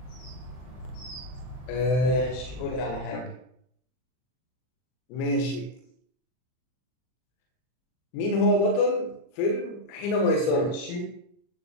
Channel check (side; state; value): right; late; 40 ms